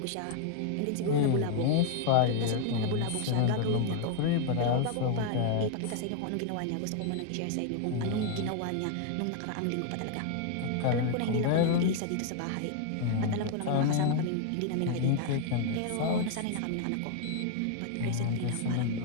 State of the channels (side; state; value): both; different; correlation 0.00